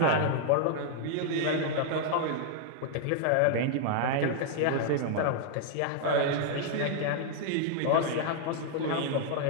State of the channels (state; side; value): different; both; correlation 0.00